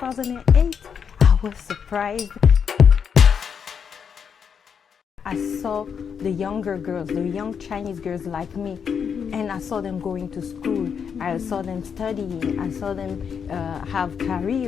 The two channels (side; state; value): right; quieter; 7.0 dB